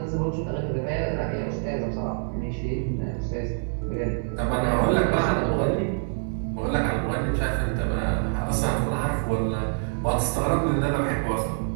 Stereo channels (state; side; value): silent; left; 56 dB below the other